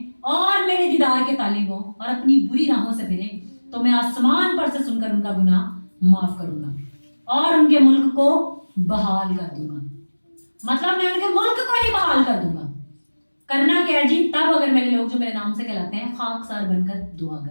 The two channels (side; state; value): both; inverted; correlation -1.00